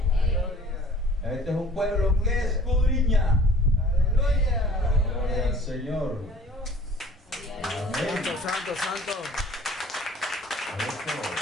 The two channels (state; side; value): normal; both; correlation 0.51